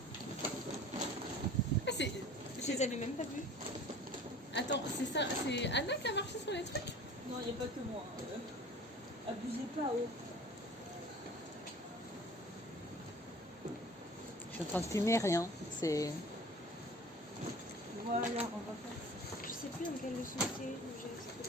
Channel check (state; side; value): normal; both; correlation 0.44